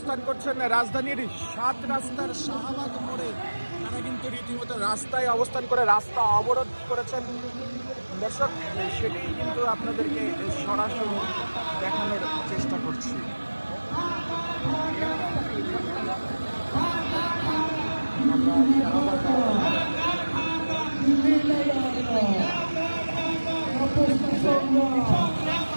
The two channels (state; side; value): inverted; both; correlation -1.00